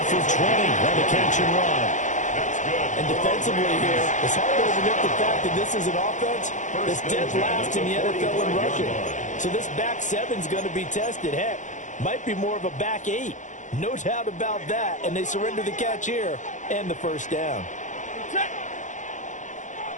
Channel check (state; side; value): late; right; 0.36 ms